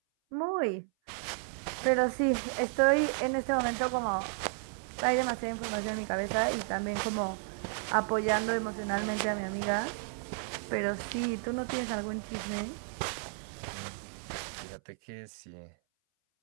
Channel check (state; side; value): silent; left; 56 dB below the other